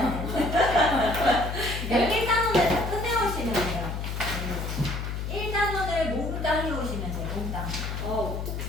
되는데 1단원을 다 끝내오시면 돼요. 1단원을 몽땅 해오시면 돼요. 몽땅.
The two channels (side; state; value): left; noise; hum, 4 dB below the sound